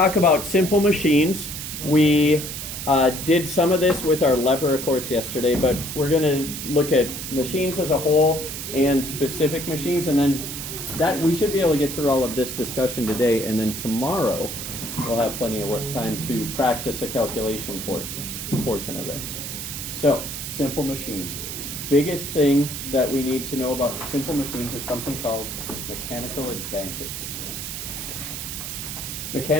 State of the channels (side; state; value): right; noise; hiss, 7 dB below the sound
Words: about simple machines. We did some of this with our lever course yesterday, but we're going to look at machines as a whole and specific machines, and then that we should be able to get through all of this discussion today, and then tomorrow we'll have plenty of work time to practice a calculation portion of this. So, simple machines. Biggest thing that we need to know about simple machines is something called mechanical advantage.